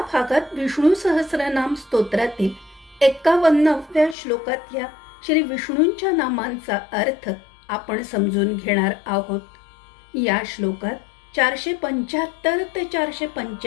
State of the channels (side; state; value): right; drops out; at 4.2 s